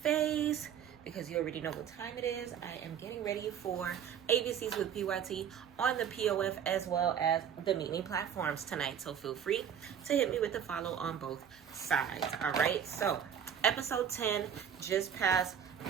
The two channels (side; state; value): left; quieter; 8.5 dB